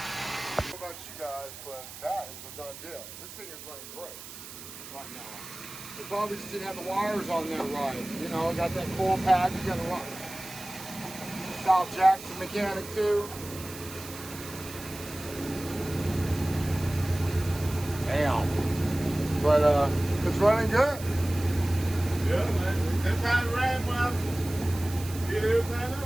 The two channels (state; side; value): noise; right; hiss, 13 dB below the sound